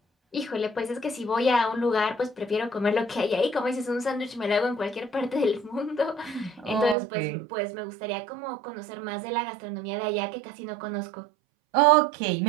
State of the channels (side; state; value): left; drops out; at 7.0 s